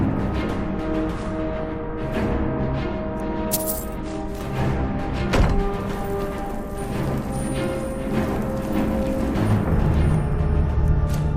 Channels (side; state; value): both; identical; correlation 1.00